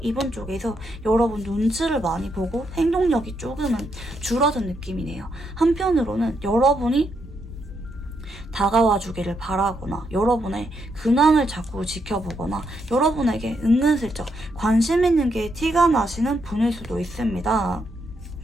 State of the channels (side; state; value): both; normal; correlation 0.79